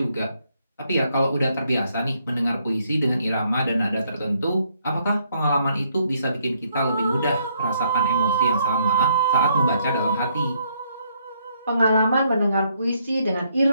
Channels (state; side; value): inverted; both; correlation -0.71